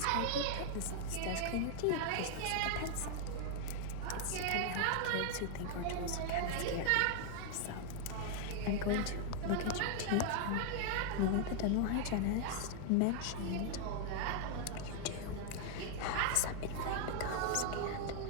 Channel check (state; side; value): different; both; correlation 0.00